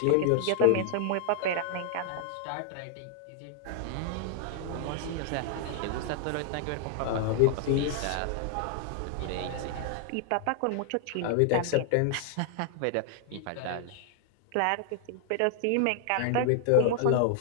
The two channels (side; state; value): both; different; correlation -0.01